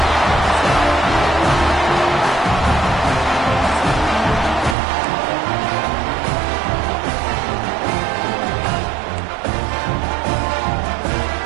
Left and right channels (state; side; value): drops out; left; at 4.8 s